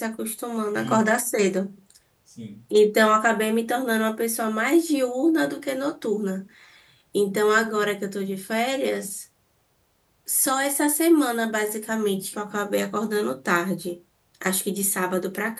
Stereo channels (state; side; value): identical; both; correlation 1.00